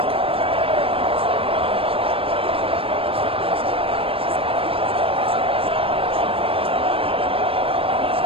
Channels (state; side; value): late; left; 0.27 ms